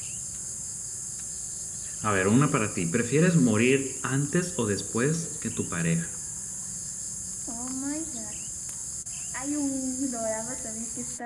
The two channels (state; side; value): identical; both; correlation 1.00